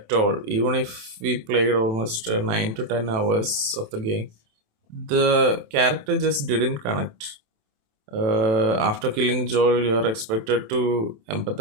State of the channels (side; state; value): left; late; 27 ms